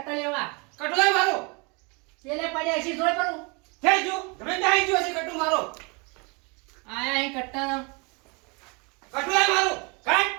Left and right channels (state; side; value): quieter; left; 30.5 dB